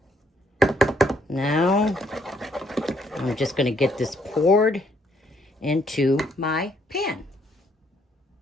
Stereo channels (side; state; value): both; normal; correlation 0.70